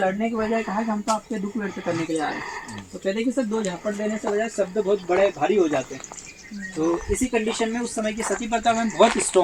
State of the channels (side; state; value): both; identical; correlation 1.00